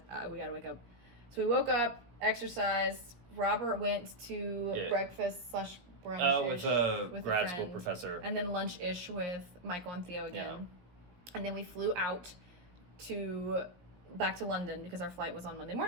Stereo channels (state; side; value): late; left; 17 ms